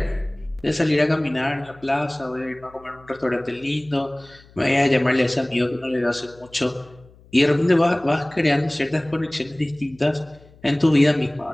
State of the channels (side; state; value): left; noise; hum, 26 dB below the sound